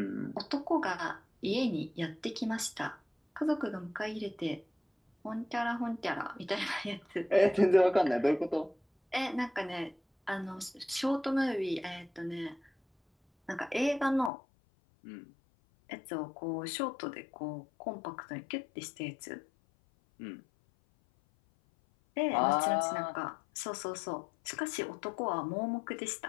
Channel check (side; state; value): right; drops out; at 14.3 s